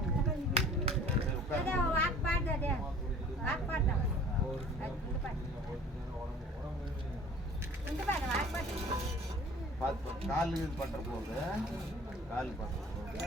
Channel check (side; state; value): both; normal; correlation 0.48